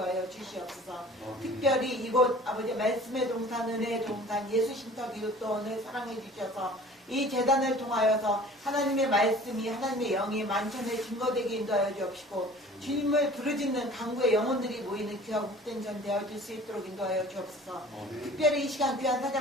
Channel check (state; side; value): normal; both; correlation 0.46